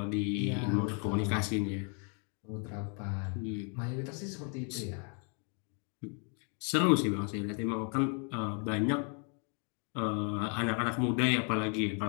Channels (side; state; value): right; quieter; 39.4 dB